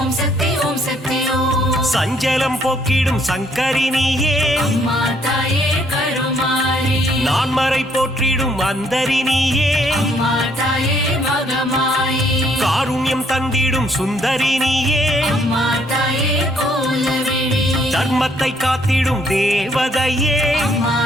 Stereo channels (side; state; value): both; normal; correlation 0.67